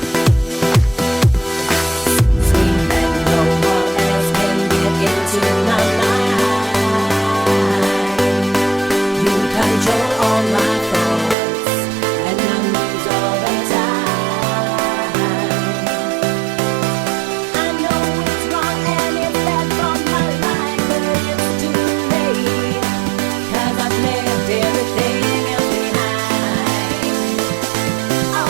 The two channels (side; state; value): left; drops out; at 11.4 s